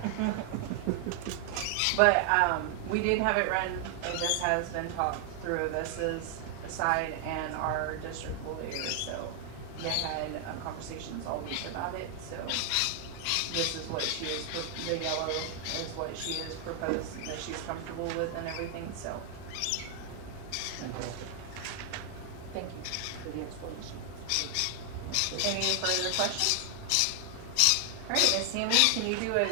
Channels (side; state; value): both; different; correlation 0.00